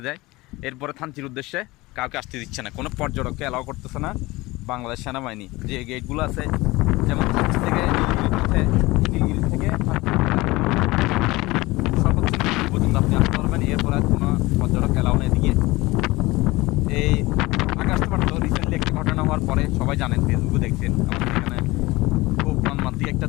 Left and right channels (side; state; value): right; quieter; 20.9 dB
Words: যায়। এরপরে থানচির উদ্দেশ্যে কাউকে আসতে দিচ্ছে না, কোনো পর্যটককে অ্যালাউ করতেছে না বাংলাদেশ সেনাবাহিনী। যে গেটগুলো আছে, যেমন থানচি থেকে নীলগিরি থেকে সর্বোচ্চ নীলগিরি পর্যন্ত আপনি আসতে পারবেন। এরপর আর কোনো পর্যটক অ্যালাউ নেই এদিকে। এই আগস্ট মাসে রিসেন্টলি একটা ঘটনা হওয়ার পরে সবাই জানেন, ফেসবুকে দেখছেন, আমাদের এখানে খুব মর্মান্তিক একটা